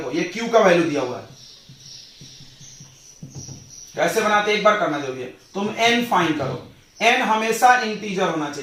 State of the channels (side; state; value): both; identical; correlation 1.00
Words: ये Q का वैल्यू दिया हुआ है, कैसे बनाते एक बार करना जरूरी है। तुम n फाइंड करो, n हमेशा इंटीजर होना